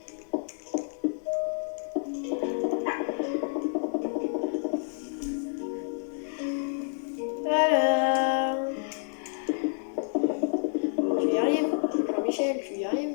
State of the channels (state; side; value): silent; right; 59 dB below the other